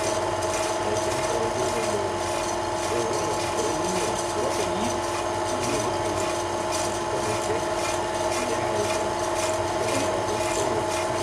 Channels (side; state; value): both; identical; correlation 1.00